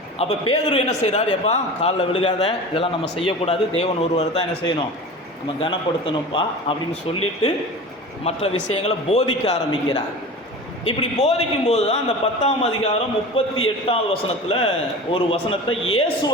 அப்போ பேதுரு என்ன செய்கிறார்? எப்பா காலில் விழுகாத, இதெல்லாம் நம்ம செய்யக்கூடாது, தேவன் ஒருவர் தான் என்ன செய்யணும், நம்ம கனப்படுத்தணும்ப்பா அப்படின்னு சொல்லிட்டு மற்ற விஷயங்களை போதிக்க ஆரம்பிக்கிறார். இப்படி போதிக்கும்போது தான் அந்த 10ஆம் அதிகாரம் 38வது வசனத்தில் ஒரு வசனத்தை,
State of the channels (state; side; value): normal; both; correlation 0.34